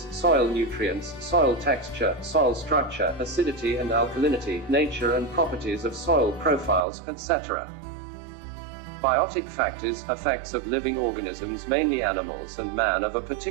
soil nutrients, soil texture, soil structure, acidity and alkalinity, nature and properties of soil profiles, etc. Biotic factors, effects of living organisms, mainly animals and man, of a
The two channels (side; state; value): left; drops out; at 6.9 s